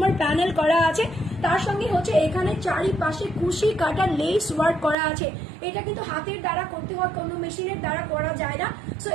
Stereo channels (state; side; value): drops out; left; at 5.0 s